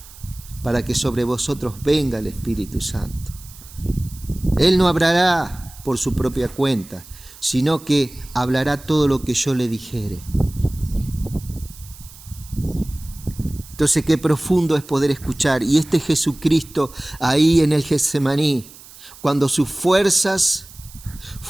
para que sobre vosotros venga el Espíritu Santo. Él no hablará por su propia cuenta, sino que hablará todo lo que yo le dijere. Entonces, qué profundo es poder escuchar. Y este Jesucristo ahí en el Getsemaní, cuando sus fuerzas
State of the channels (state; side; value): noise; right; hiss, 20 dB below the sound